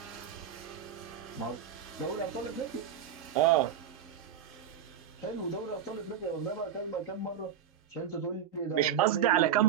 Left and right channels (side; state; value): left; quieter; 8.9 dB